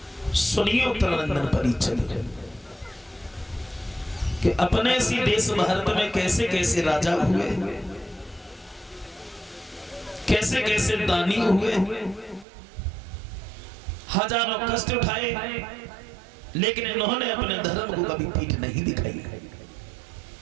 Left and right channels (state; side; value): drops out; left; at 12.5 s